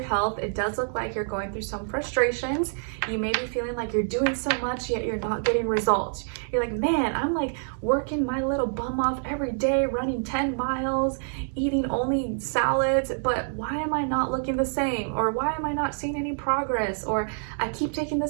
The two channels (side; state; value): left; silent; digital silence